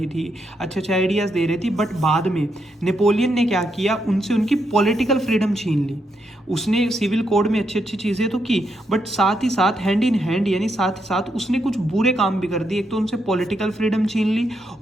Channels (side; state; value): both; normal; correlation 0.80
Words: थी, अच्छे आइडियाज दे रही थी। बट बाद में नेपोलियन ने क्या किया, उनसे उनकी पॉलिटिकल फ्रीडम छीन ली। उसने सिविल कोड में अच्छी चीजें तो की, बट साथ ही साथ हैंड इन हैंड, यानी साथ ही साथ उसने कुछ बुरे काम भी कर दिए। एक तो उनसे पॉलिटिकल फ्रीडम छीन ली,